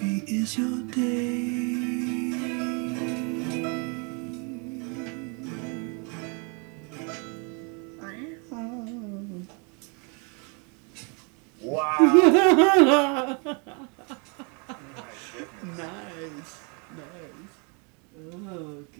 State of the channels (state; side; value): quieter; left; 34.7 dB